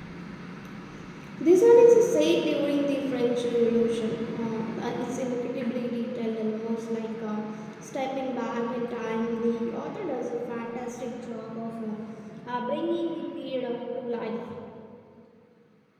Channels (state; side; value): identical; both; correlation 1.00